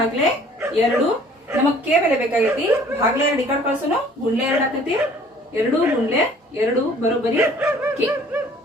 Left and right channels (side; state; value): both; normal; correlation 0.54